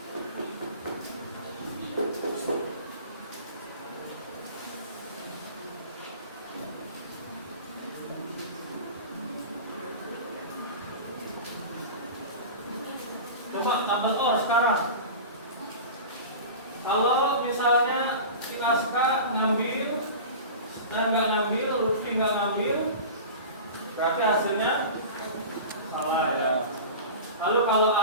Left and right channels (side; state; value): both; inverted; correlation -0.33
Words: Coba tabel OR sekarang. Kalau misalnya si Aska ngambil dan nggak ngambil, Lutfi nggak ngambil, berarti hasilnya salah ya. Lalu kalau